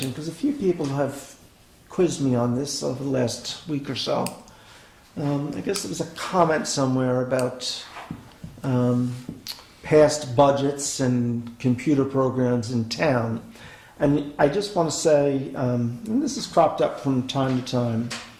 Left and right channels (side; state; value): both; identical; correlation 1.00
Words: because a few people have quizzed me on this over the last week or so. I guess there was a comment somewhere about past budgets and computer programs in town. And I just want to say, and this has cropped up from time to time,